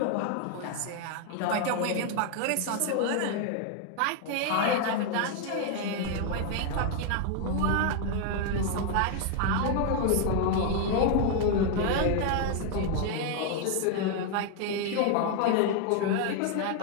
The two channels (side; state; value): both; different; correlation 0.00